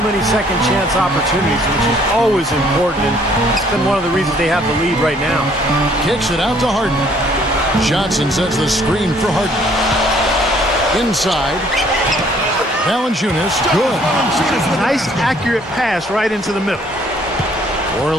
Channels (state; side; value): normal; both; correlation 0.61